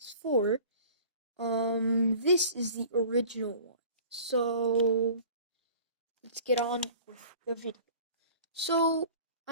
this is the original one. So, let's get on with the video. So,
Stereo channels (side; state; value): both; inverted; correlation -0.45